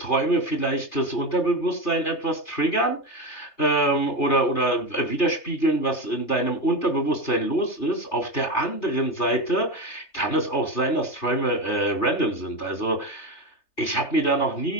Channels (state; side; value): late; right; 3.3 ms